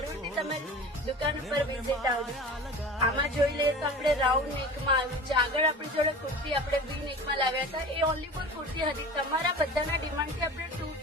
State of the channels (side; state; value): both; normal; correlation 0.37